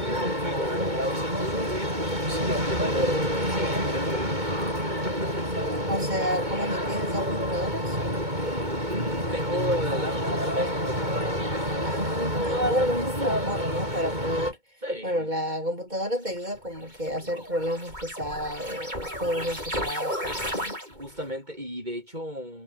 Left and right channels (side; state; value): left; late; 2.2 ms